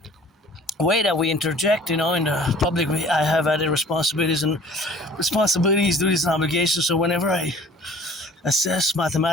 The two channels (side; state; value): both; normal; correlation 0.50